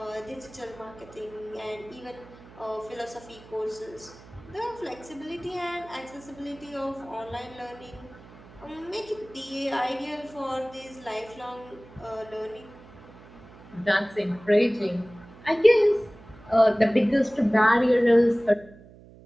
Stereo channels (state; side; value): noise; right; hum, 21 dB below the sound